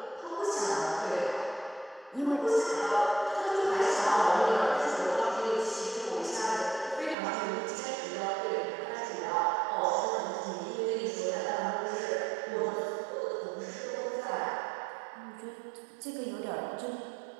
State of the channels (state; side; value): drops out; left; at 7.2 s